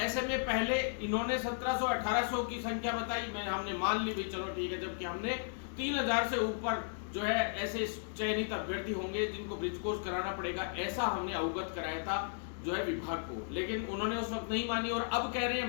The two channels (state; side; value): silent; right; digital silence